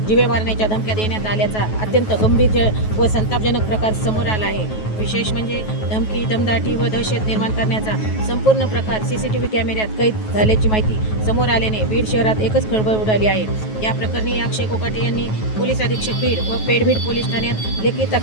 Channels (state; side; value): late; right; 9.3 ms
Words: जीवे मारण्याच्या धमक्या देण्यात आल्याचा अत्यंत गंभीर व संतापजनक प्रकार समोर आला आहे. विशेष म्हणजे धमकी, दमदाटी व दहशत निर्माण करण्याचा संपूर्ण प्रकार सीसीटीव्ही कॅमेऱ्यात कैद झाल्याची माहिती समोर आल्याने बीड शहरात एकच खळबळ उडाली आहे. या प्रकरणी अक्षय कोकाटे यांनी पोलीस अधीक्षक बीड व पेडबीड पोलीस ठाण्यात लेखी